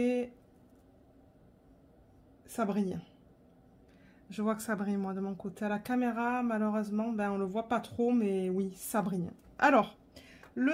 ça brille. Je vois que ça brille, moi, de mon côté. À la caméra, malheureusement, ben, on le voit pas trop, mais oui, ça brille. Alors,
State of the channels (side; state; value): both; identical; correlation 1.00